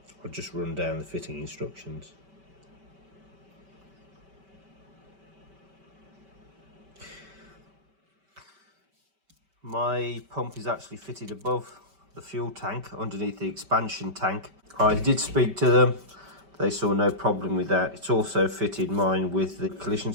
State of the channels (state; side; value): late; left; 5.2 ms